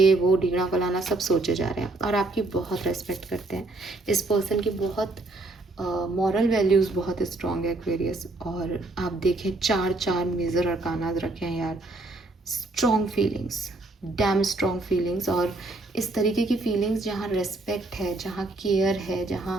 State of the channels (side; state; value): left; quieter; 3.0 dB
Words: वो ढींगना फलाना सब सोचे जा रहे हैं, और आपकी बहुत रेस्पेक्ट करते हैं। इस पर्सन की बहुत मॉरल वैल्यूज़ बहुत स्ट्रॉन्ग है एक्वेरियस। और आप देखें 4 मेजर अरकाना रखे हैं यार, strong feelings, dam strong feelings, और इस तरीके की फीलिंग्स जहाँ रेस्पेक्ट है, जहाँ केयर है,